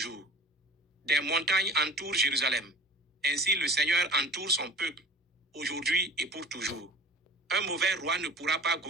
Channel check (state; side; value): normal; both; correlation 0.43